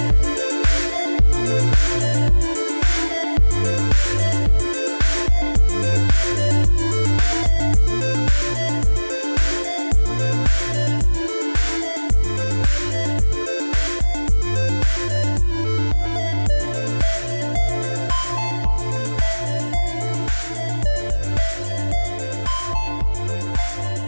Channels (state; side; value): inverted; both; correlation -1.00